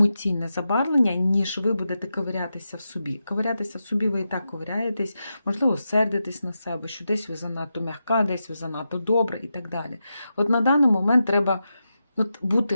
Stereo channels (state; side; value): inverted; both; correlation -0.89